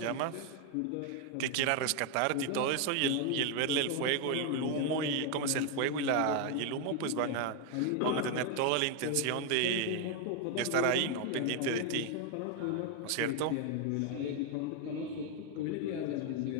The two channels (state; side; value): different; both; correlation 0.01